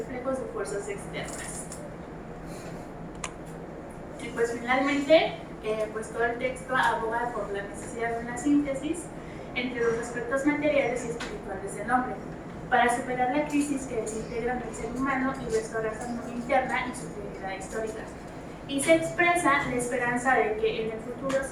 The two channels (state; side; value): identical; both; correlation 1.00